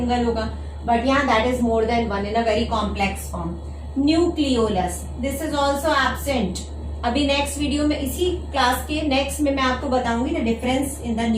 होगा, बट यहाँ that is more than one in a very complex form. Nucleolus, this is also absent. अभी नेक्स्ट वीडियो में, इसी क्लास के नेक्स्ट में मैं आपको बताऊंगी the difference in the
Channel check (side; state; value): both; identical; correlation 1.00